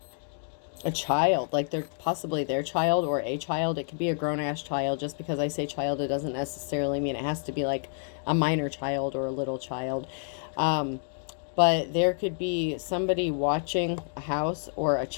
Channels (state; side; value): silent; right; digital silence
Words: child, like they're possibly their child or a child. It could be a grown-ass child. Just because I say child, it doesn't necessarily mean it has to be like a minor child or a little child. But there could be somebody watching a house or a